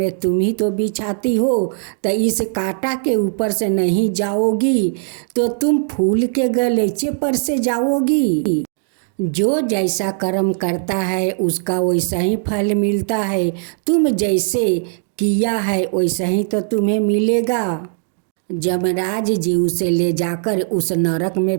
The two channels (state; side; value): silent; left; digital silence